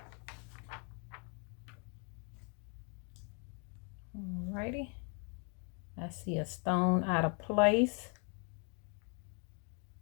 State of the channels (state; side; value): quieter; right; 37.7 dB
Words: Alrighty. I see a stone out of place.